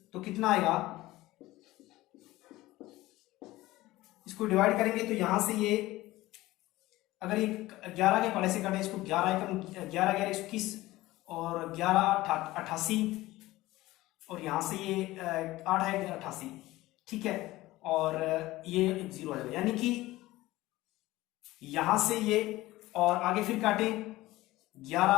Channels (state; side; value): quieter; right; 17.8 dB